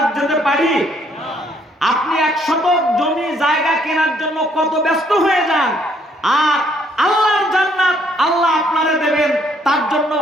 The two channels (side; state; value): both; normal; correlation 0.67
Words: যেতে পারি? আপনি 1 শতক জমি জায়গা কেনার জন্য কত ব্যস্ত হয়ে যান, আর আল্লাহর জান্নাত আল্লাহ আপনারে দেবেন, তার জন্য